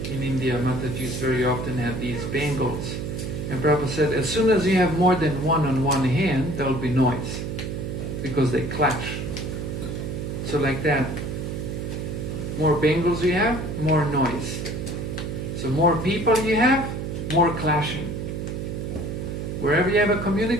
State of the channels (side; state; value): right; noise; hum, 4 dB below the sound